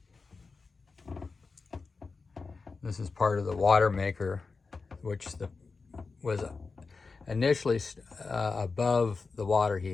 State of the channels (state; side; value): quieter; right; 4.4 dB